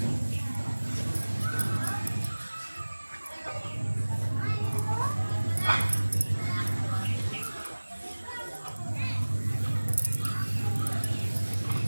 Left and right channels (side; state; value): both; inverted; correlation -1.00